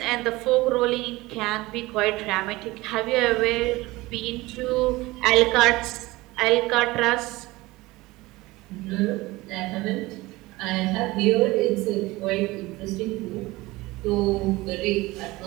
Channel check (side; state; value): left; quieter; 20.3 dB